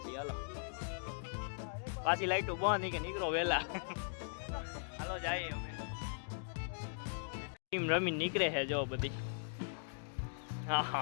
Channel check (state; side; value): silent; right; digital silence